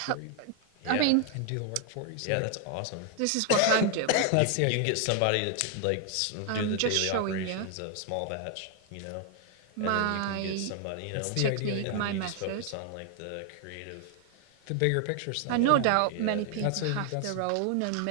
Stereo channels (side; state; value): both; different; correlation 0.00